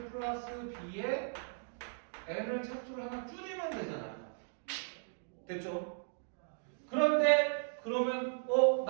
플러스 b에 n을 차수를 하나 줄이면 되잖아요. 됐죠? 그런데 그러면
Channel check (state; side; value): silent; left; digital silence